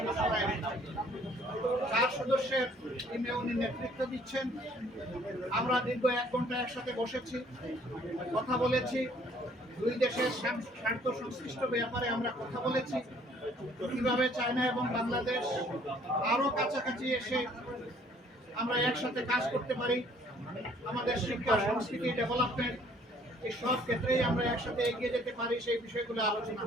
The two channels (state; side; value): normal; both; correlation 0.59